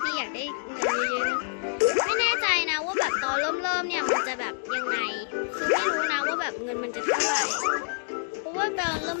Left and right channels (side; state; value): right; silent; digital silence